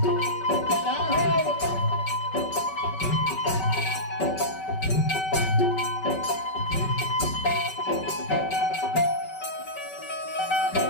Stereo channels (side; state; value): right; late; 5.2 ms